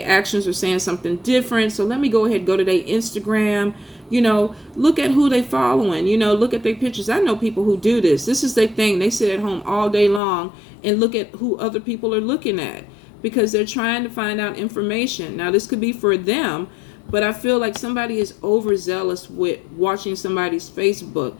actions are saying something different. So let me go ahead and go to their Instagram. Look at who they following. Look at their pictures. I know people who do this. This is their thing. They sit at home all day long and look at who other people are looking at, because they're trying to find out information. Now, this could be for them, but I feel like somebody is overzealous with watching somebody's Facebook.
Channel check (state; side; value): drops out; right; at 10.2 s